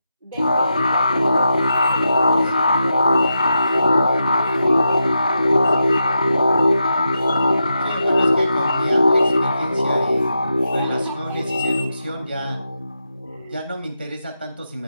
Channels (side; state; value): both; inverted; correlation -0.86